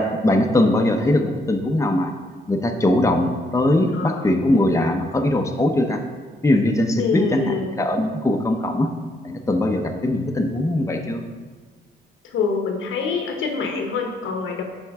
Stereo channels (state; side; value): normal; both; correlation 0.75